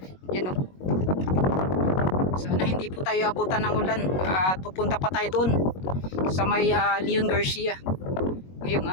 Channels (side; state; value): right; late; 21 ms